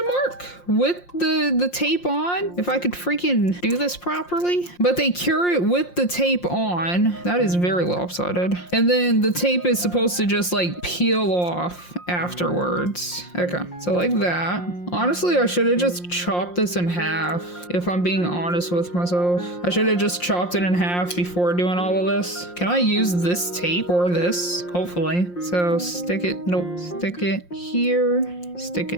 mark, with the tape on. If I could freaking do this properly. But they cure it with the tape on. That is very lopsided. And then the tape is supposed to just like peel off afterwards. Okay, so like that. Honestly, I should have just chopped this in half, if I'm being honest with myself. I should have just chopped it in half before doing all of this. Can I use this tape or this? Hopefully. So stick it, nope, stick it here, stick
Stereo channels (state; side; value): late; right; 5.7 ms